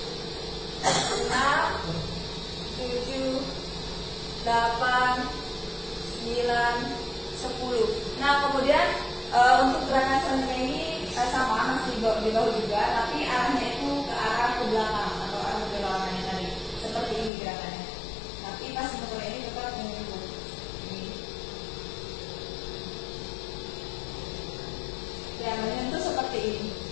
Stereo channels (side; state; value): right; drops out; at 17.3 s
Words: 6, 7, 8, 9, 10. Nah, kemudian untuk gerakan selanjutnya ini sama, masih di bawah juga, tapi arahnya itu ke arah ke belakang atau arah ke belakangnya tadi. Seperti ini gerakannya. Tapi pas sebenarnya ini tetap menyentuh. Ini. Ya, menyentuh seperti ini.